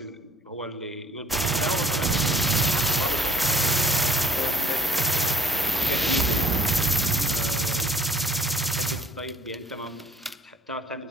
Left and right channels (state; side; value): normal; both; correlation 0.60